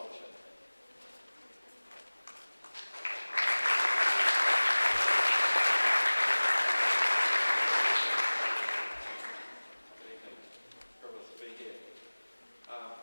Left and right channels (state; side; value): inverted; both; correlation -1.00